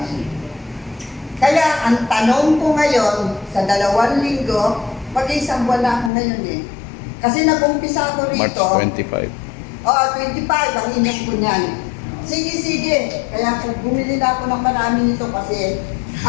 Kaya ang tanong ko ngayon, sa 2 linggo, mag-isang buwan na ako ngayon eh. Kasi nag-umpisa ako March rito. 25. Oo, 25 ang inom ko niyan. Sige. Kaya bumili na ako ng marami nito kasi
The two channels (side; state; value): right; drops out; at 6.1 s